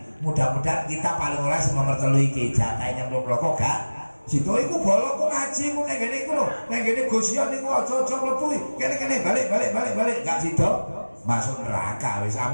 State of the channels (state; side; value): inverted; both; correlation -1.00